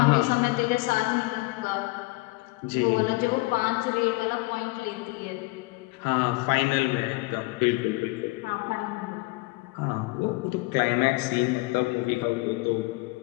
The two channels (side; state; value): right; quieter; 23.9 dB